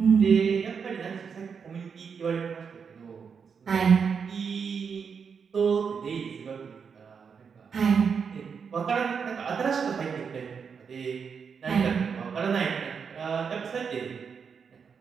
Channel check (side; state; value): left; quieter; 6.3 dB